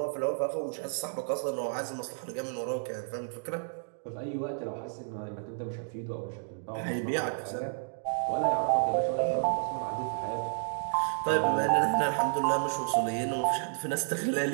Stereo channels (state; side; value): silent; left; digital silence